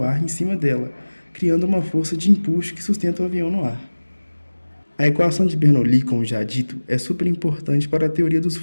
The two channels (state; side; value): inverted; both; correlation -1.00